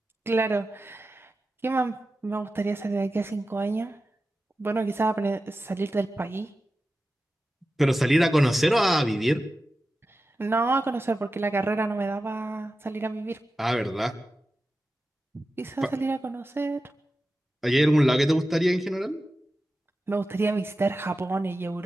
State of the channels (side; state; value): both; normal; correlation 0.93